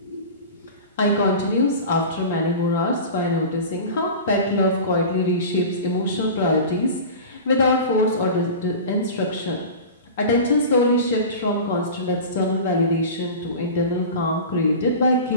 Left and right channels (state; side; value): inverted; both; correlation -0.33